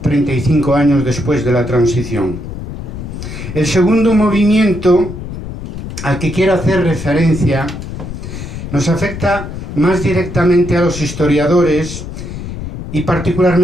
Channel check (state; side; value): noise; left; rumble, 9 dB below the sound